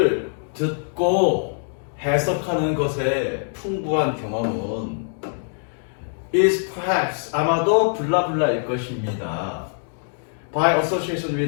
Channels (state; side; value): silent; right; digital silence